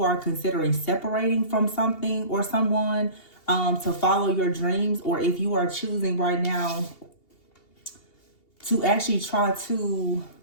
are considering separating from something or someone to follow your dreams, or if you are choosing right now to actually try to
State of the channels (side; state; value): right; late; 2.8 ms